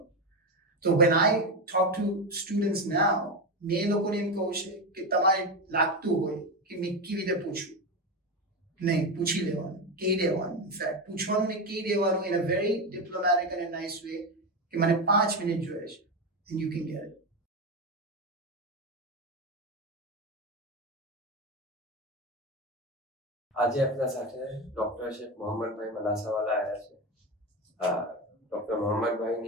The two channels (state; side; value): normal; both; correlation 0.15